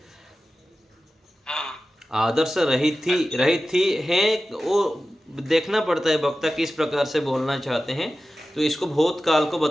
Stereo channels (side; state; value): both; normal; correlation 0.94